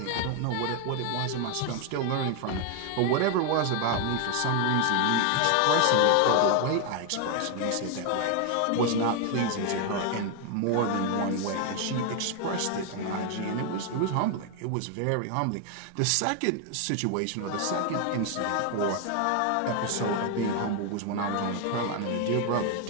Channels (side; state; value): both; different; correlation 0.01